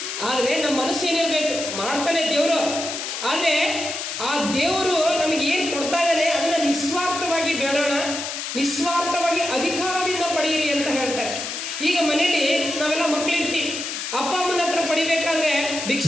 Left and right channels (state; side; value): noise; left; hiss, 5 dB below the sound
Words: ಆದರೆ ನಮ್ಮ ಮನಸ್ಸು ಏನಿರಬೇಕು, ಮಾಡ್ತಾನೆ ದೇವರು. ಆದರೆ ಆ ದೇವರು ನಮಗೆ ಏನು ಕೊಡ್ತಾ ಇದ್ದಾನೆ ಅದನ್ನು ನಿಸ್ವಾರ್ಥವಾಗಿ ಬೇಡೋಣ, ನಿಸ್ವಾರ್ಥವಾಗಿ ಅಧಿಕಾರದಿಂದ ಪಡೆಯಿರಿ ಅಂತ ಹೇಳ್ತಾರೆ. ಈಗ ಮನೇಲಿ ನಾವೆಲ್ಲ ಮಕ್ಕಳಿರ್ತೀವಿ, ಅಪ್ಪ ಅಮ್ಮನ ಹತ್ರ ಪಡಿಬೇಕಾದ್ರೆ